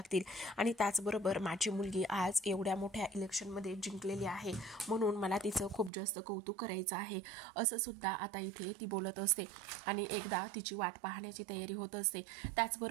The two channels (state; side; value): drops out; left; at 5.9 s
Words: आणि त्याचबरोबर माझी मुलगी आज एवढ्या मोठ्या इलेक्शनमध्ये जिंकलेली आहे म्हणून मला तिचं खूप जास्त कौतुक करायचं आहे, असं सुद्धा आता इथे ती बोलत असते आणि एकदा तिची वाट पाहण्याची तयारी होत असते.